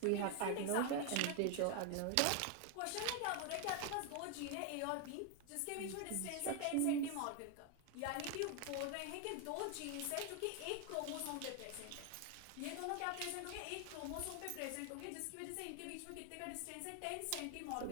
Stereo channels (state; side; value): different; both; correlation 0.01